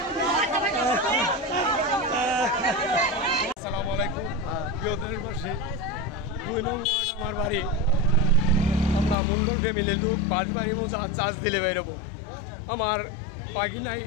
আসসালামু আলাইকুম প্রিয় দেশবাসী, 2 নং ওয়ার্ড আমার বাড়ি। আমরা মঙ্গল ফ্যামিলির লোক বাড়ি মোজা চার্জ দিলে বেরোবো। আমার পাগিনাই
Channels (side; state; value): right; drops out; at 9.2 s